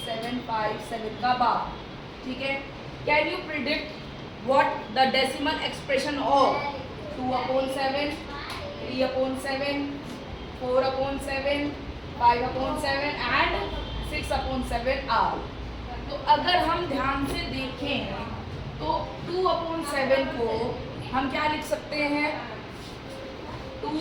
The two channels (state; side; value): identical; both; correlation 1.00